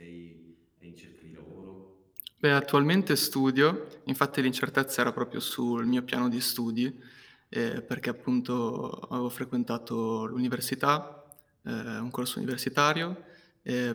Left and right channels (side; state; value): both; identical; correlation 1.00